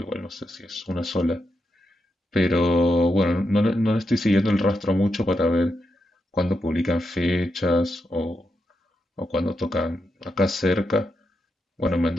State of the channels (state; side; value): normal; both; correlation 0.85